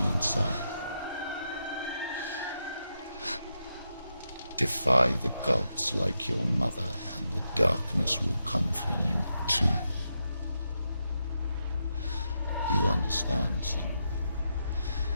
inside. Defy the gods like your mother, and the darkness will come for you too. You understand, Senua?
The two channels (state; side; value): inverted; both; correlation -0.84